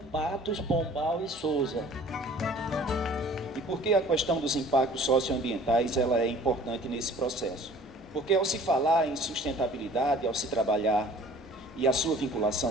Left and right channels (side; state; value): both; normal; correlation 0.50